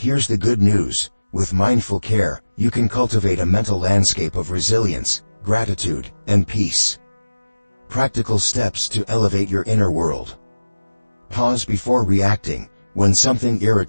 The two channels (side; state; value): both; inverted; correlation -1.00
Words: the good news, with mindful care, you can cultivate a mental landscape of resilience, gratitude, and peace. Practical steps to elevate your inner world. Pause before reacting. When something